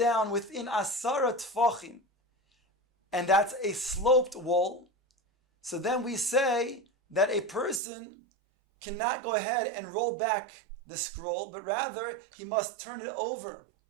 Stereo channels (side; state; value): left; drops out; at 7.8 s